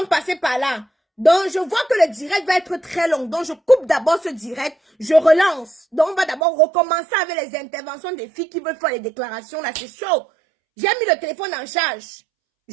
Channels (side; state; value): left; drops out; at 6.4 s